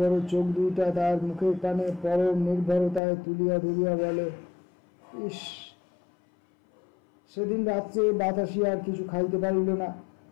চোখ দুইটা তার মুখের কানে পরম নির্ভরতায় তুলিয়া ধরিয়া বলে, ইস! সেদিন রাত্রে বাতাসি আর কিছু খাইতে পারিল না।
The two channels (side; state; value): right; drops out; at 3.0 s